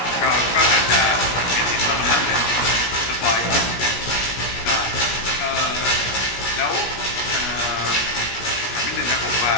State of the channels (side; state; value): right; late; 16 ms